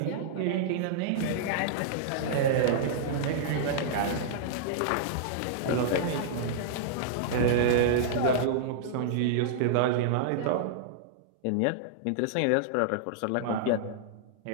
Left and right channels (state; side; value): different; both; correlation -0.02